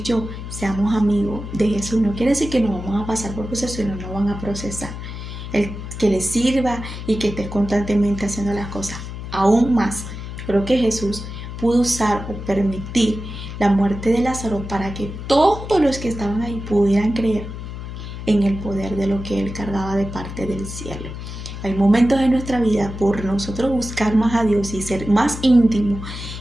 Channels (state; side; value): noise; left; hum, 9 dB below the sound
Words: yo seamos amigos de Jesús no quiere decir que no vamos a pasar por procesos y no van a procesar. El que les sirva y que estés constantemente haciendo las cosas. Aún más, creo que Jesús pudo usar o permitir la muerte de Lázaro para que todos los que estaban ahí pudieran creer en el poder de lo que Él cargaba de parte del cielo. Hay momentos en nuestra vida, por nosotros buscar más a Dios y ser más íntimo